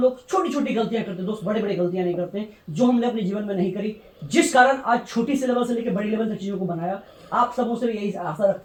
छोटी छोटी गलतियां करते हैं दोस्त, बड़े बड़े गलतियां नहीं करते, जो हमने अपने जीवन में नहीं करी, जिस कारण आज छोटी से लेवल से लेकर बड़ी लेवल तक चीजों को बनाया। आप सबों से यही आशा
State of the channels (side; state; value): both; identical; correlation 1.00